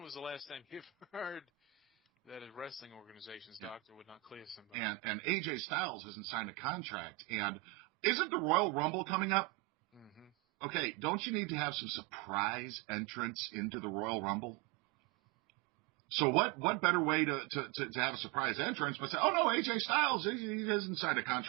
was the last time you've heard that a wrestling organization's doctor would not clear somebody? And AJ Styles hasn't signed a contract. And isn't the Royal Rumble coming up? Mm-hmm. Okay, don't you need to have some surprise entrance into the Royal Rumble? So what better way to have a surprise entrance but say, oh, no, AJ Styles, he hasn't signed a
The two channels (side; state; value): left; quieter; 19.0 dB